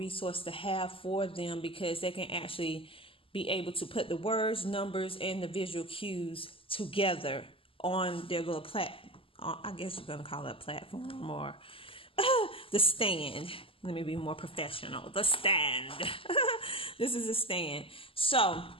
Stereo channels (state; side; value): late; right; 0.26 ms